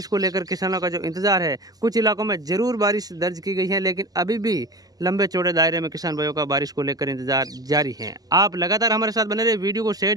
को लेकर किसानों का जो इंतजार है, कुछ इलाकों में जरूर बारिश दर्ज की गई है, लेकिन अभी भी लंबे चौड़े दायरे में किसान भाइयों का बारिश को लेकर इंतजार जारी है। आप लगातार हमारे साथ बने रहे, वीडियो को शेयर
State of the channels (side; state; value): left; late; 0.18 ms